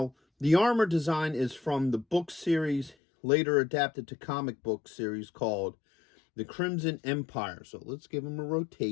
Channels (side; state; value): right; drops out; at 3.0 s